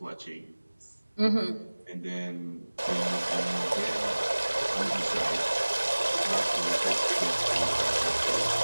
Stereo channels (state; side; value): inverted; both; correlation -1.00